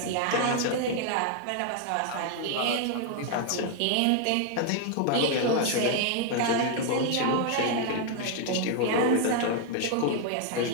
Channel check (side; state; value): both; different; correlation 0.00